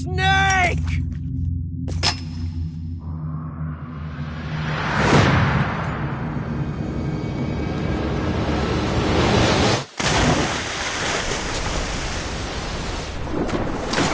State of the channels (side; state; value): both; identical; correlation 1.00